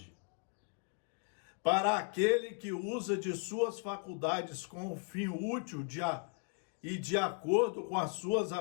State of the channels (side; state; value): right; quieter; 37.7 dB